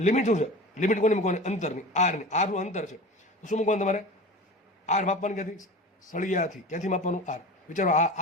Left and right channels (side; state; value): both; normal; correlation 0.34